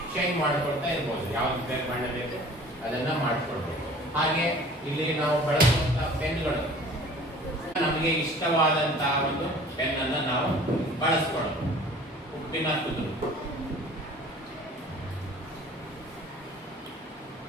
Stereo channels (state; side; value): normal; both; correlation 0.47